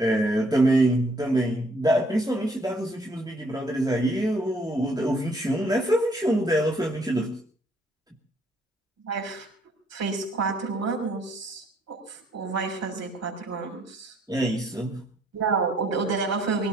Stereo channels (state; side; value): normal; both; correlation 0.65